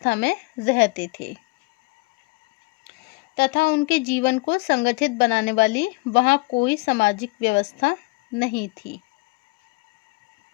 में रहते थे तथा उनके जीवन को संगठित बनाने वाली वहां कोई सामाजिक व्यवस्था नहीं थी।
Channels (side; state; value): right; quieter; 26.2 dB